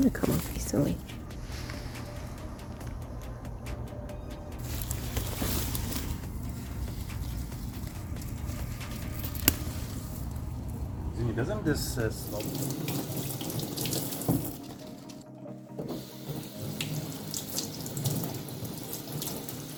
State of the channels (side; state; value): both; identical; correlation 1.00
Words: to come off easily. Doesn't this slow?